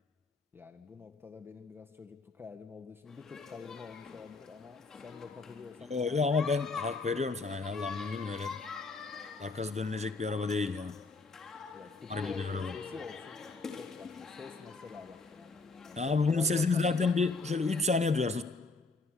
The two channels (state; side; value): quieter; right; 3.7 dB